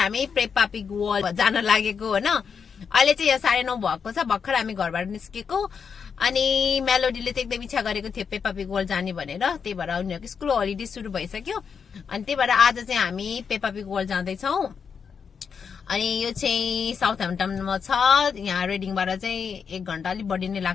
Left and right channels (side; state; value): right; quieter; 6.4 dB